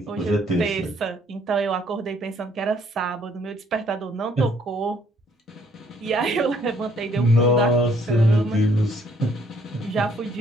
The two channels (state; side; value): normal; both; correlation 0.64